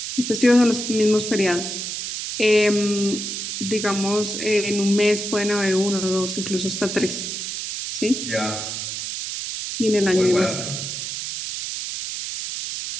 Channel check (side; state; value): right; noise; hiss, 5 dB below the sound